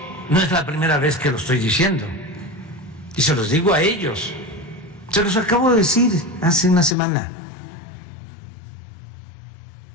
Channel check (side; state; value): right; drops out; at 7.0 s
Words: no es la primera vez que lo estoy diciendo, y se los digo a ellos, se los acabo de decir hace una semana.